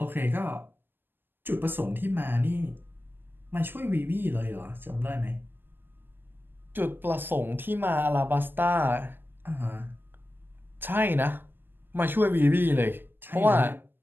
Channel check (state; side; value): late; left; 0.097 ms